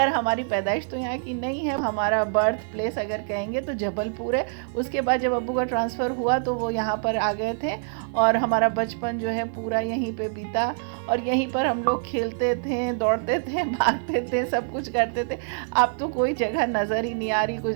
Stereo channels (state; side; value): silent; left; 58 dB below the other